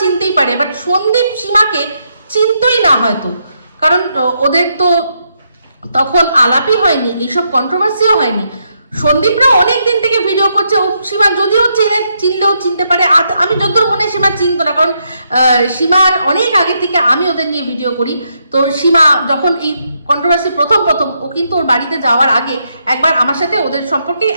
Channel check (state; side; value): inverted; both; correlation -0.79